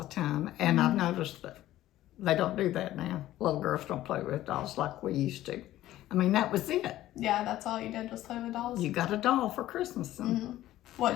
time, and I've noticed that they don't do that now. Little girls don't play with dolls like we used to. I mean, that was it. Yeah, that's all you did was play with dolls? You got a doll for Christmas. And, What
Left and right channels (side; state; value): right; quieter; 14.4 dB